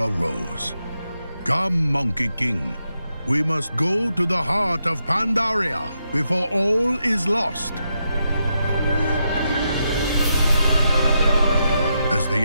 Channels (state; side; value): inverted; both; correlation -0.83